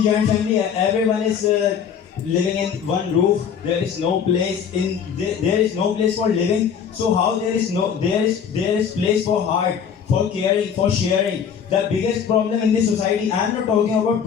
family, everyone is living in one roof. There is no place there is no place for living. So how there is place for heart, for caring, for sharing. The biggest problem in this society, I am not talking about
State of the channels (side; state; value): right; quieter; 7.5 dB